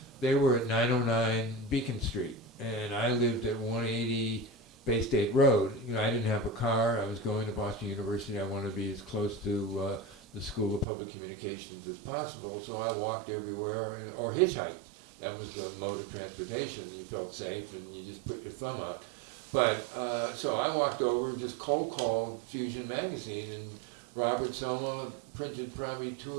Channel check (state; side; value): drops out; left; at 10.9 s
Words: They were at 909 Beacon Street, and I lived at 180 Bay State Road. You know, I didn't have a car. I was going to Boston University. I wanted to be as close to the School of Public Communications as possible, so I walked everywhere or hitchhiked. That was the mode of transportation. You felt safe, and you just put your thumb out. But so I walked over, just cold called Fusion magazine, and Robert Soma printed probably 2